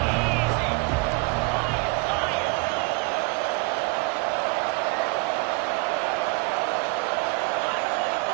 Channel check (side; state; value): left; quieter; 29.3 dB